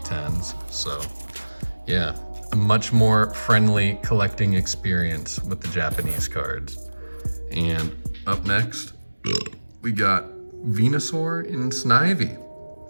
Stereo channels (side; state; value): both; inverted; correlation -1.00